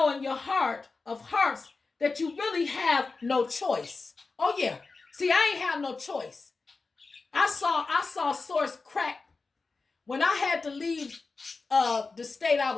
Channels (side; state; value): right; quieter; 4.0 dB